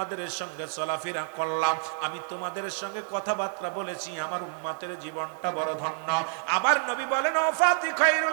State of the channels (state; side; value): silent; left; 59 dB below the other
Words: সঙ্গে চলাফেরা করলাম, আমি তোমাদের সঙ্গে কথাবার্তা বলেছি, আমার উম্মতের জীবনটা বড় ধন্য। আবার নবী বলেন, ওয়াফাতি